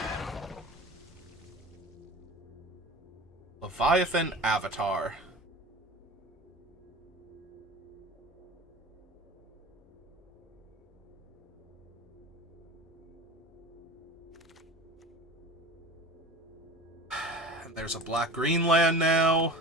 Leviathan Avatar. And there's a black-green land now.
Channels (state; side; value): normal; both; correlation 0.35